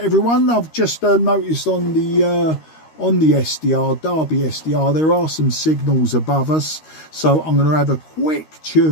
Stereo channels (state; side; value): late; right; 13 ms